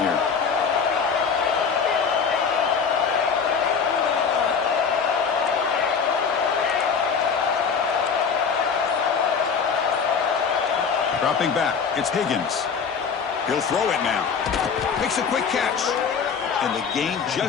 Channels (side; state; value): right; quieter; 6.1 dB